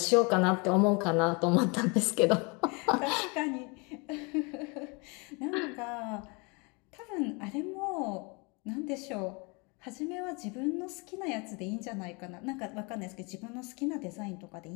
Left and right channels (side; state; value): right; quieter; 30.4 dB